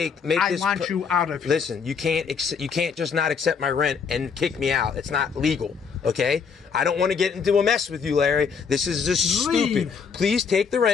make I this. want you out of here. Listen, you can't just not accept my rent and kick me out. It's not legal. Okay? I don't want to get into a mess with you, Larry. This is just Leave. stupid. Please take the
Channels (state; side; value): quieter; right; 6.0 dB